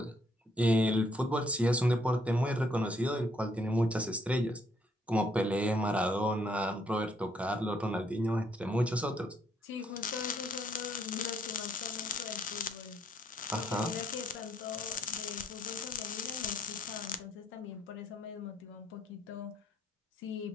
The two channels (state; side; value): normal; both; correlation 0.69